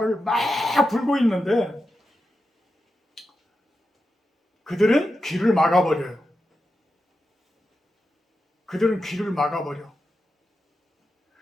막 불고 있는데 그들은 귀를 막아버려요. 그들은 귀를 막아버려.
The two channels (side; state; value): both; normal; correlation 0.89